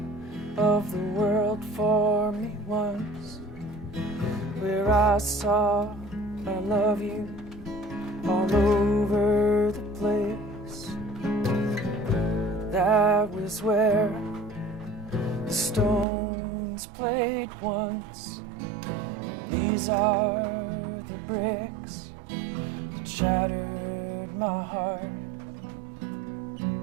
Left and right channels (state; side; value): drops out; left; at 16.1 s